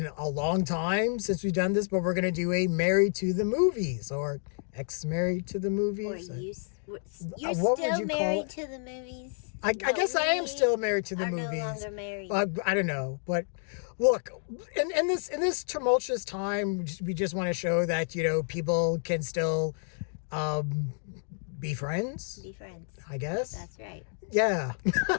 a long time since we've done this, but we're going to do a Married to the Movies or ex-married to the Or movies. you're What would still you call married it? to the movies? I But guess I am we still married to the are no movies. longer married. I don't know, but look, in this tumultuous time, we just want to show that people can still um, be friends. Be friends. I guess. That's right. Yeah.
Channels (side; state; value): right; silent; 58 dB below the other